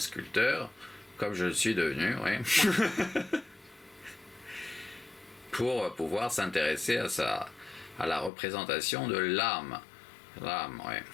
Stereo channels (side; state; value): right; drops out; at 8.3 s